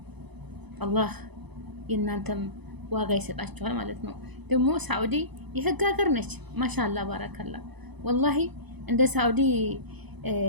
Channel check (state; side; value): late; left; 0.99 ms